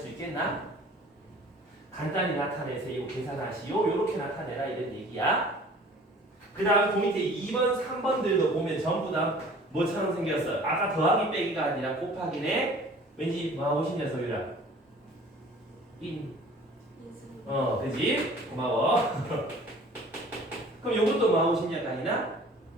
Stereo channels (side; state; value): both; normal; correlation 0.48